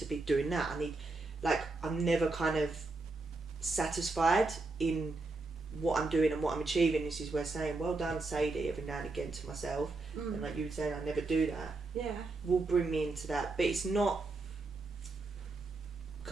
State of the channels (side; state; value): left; quieter; 3.4 dB